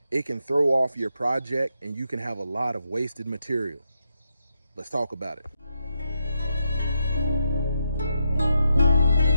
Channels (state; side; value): inverted; both; correlation -0.83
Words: it can throw off your project and you can have a lot of wasted material. Let's talk about it.